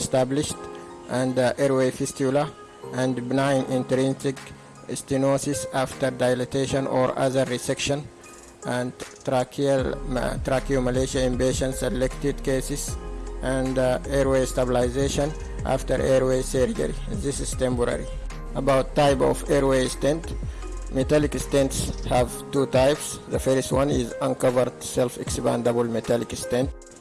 and airway fistula, and benign intrinsic stenosis after dilatation or other resection, and tracheomalacia in patient selected cases, and airway stabilization after airway surgery. This is temporary. About type of airway stent. Metallic stents have two types. The first one is uncovered self-expandable metallic stent.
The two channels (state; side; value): identical; both; correlation 1.00